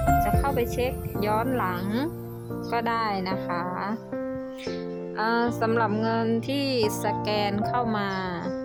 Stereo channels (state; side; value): identical; both; correlation 1.00